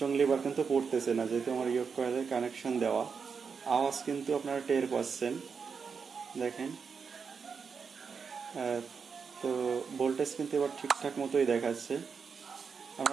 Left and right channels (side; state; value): left; quieter; 5.8 dB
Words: এবার কিন্তু পড়তেছে না, যেহেতু আমার ইয়ক কয়েলের কানেকশন দেওয়া। আওয়াজ কিন্তু আপনারা টের পাচ্ছেন। দেখেন তো ভোল্টেজ কিন্তু এবার ঠিকঠাক মতোই দেখাচ্ছে।